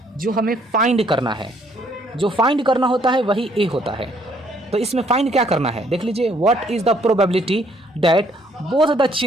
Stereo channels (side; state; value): both; normal; correlation 0.66